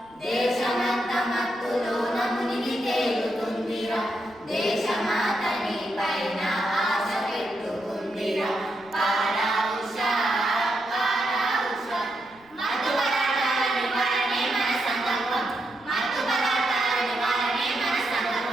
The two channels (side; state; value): right; noise; rumble, 29 dB below the sound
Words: దేశమంతా మత్తులోన మునిగి తేలుతుందిరా, దేశమాతని పైన ఆశ పెట్టుకుందిరా. పారా ఉషా, మత్తు పదార్థాల నివారణే మన సంకల్పం, మత్తు పదార్థాల నివారణే మన